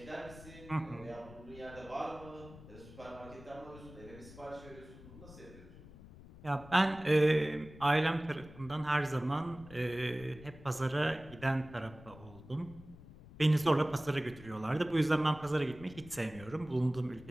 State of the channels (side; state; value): left; noise; rumble, 18 dB below the sound